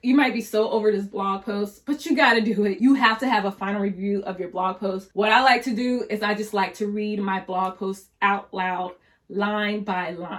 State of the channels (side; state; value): both; identical; correlation 1.00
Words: you might be so over this blog post, but you got to do it. You have to have a final review of your blog post. What I like to do is I just like to read my blog post out loud, line by